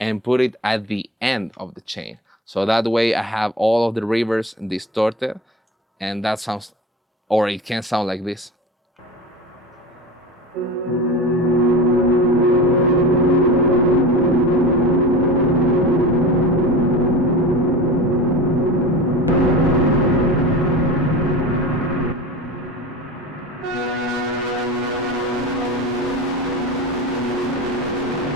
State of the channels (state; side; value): normal; both; correlation 0.32